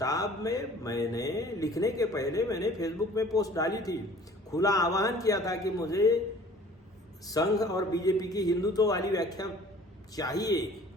में मैंने लिखने के पहले मैंने फेसबुक में पोस्ट डाली थी, खुला आह्वान किया था कि मुझे संघ और बीजेपी की हिंदुत्व वाली व्याख्या चाहिए,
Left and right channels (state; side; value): normal; both; correlation 0.50